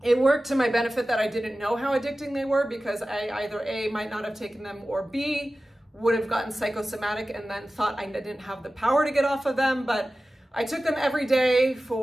It worked to my benefit that I didn't know how addicting they were, because I either A, might not have taken them, or B, would have gotten psychosomatic and then thought I didn't have the power to get off of them. But I took them every day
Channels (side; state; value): both; normal; correlation 0.95